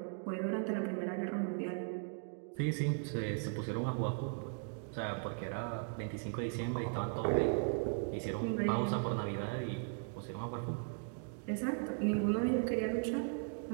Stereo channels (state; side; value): silent; left; 53 dB below the other